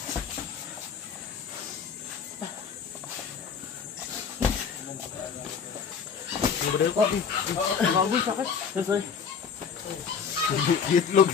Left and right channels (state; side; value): quieter; right; 6.5 dB